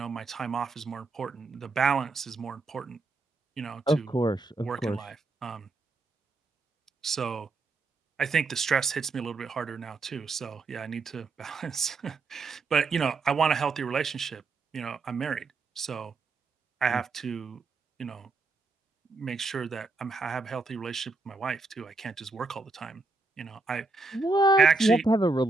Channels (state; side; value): quieter; left; 3.8 dB